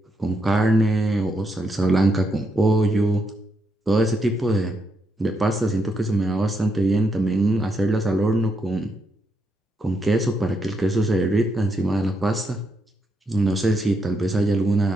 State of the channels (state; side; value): normal; both; correlation 0.79